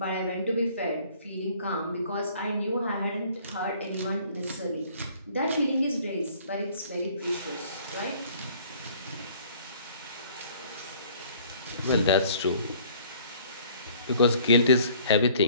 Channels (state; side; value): inverted; both; correlation -0.55